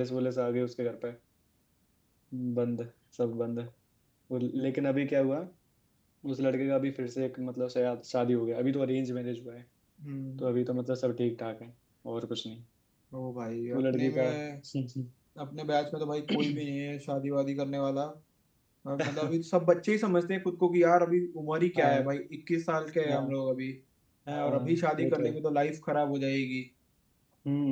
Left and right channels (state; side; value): identical; both; correlation 1.00